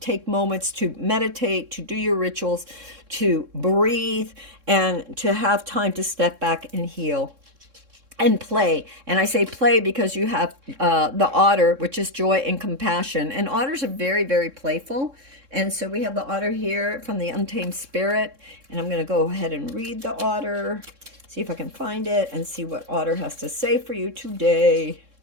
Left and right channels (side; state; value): left; late; 3.7 ms